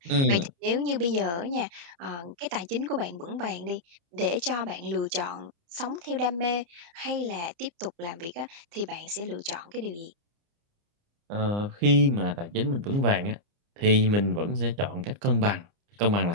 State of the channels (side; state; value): left; late; 29 ms